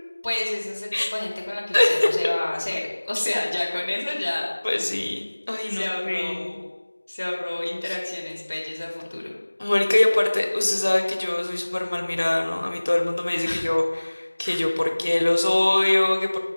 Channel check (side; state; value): both; inverted; correlation -1.00